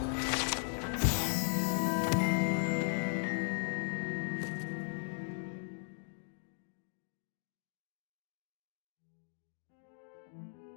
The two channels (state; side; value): silent; right; 53 dB below the other